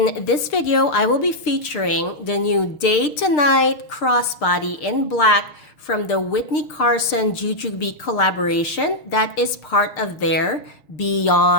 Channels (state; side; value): late; right; 6.6 ms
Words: this video, I will be featuring the new Day to Night crossbody in black from the Whitney Carson Jujubee collaboration that is part of their